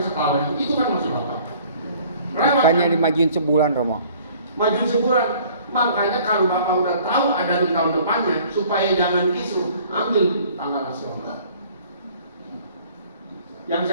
setahun. Itu kan maksud apa? Lewat makanya kan? dimajuin sebulan Romo. Maju sebulan. Makanya kalau Bapak udah tahu ada di tahun depannya, supaya jangan kisruh, ambil tanggal nasional. Yang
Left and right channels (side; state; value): both; inverted; correlation -0.54